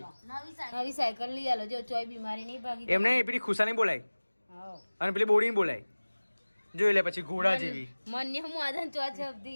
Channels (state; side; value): inverted; both; correlation -1.00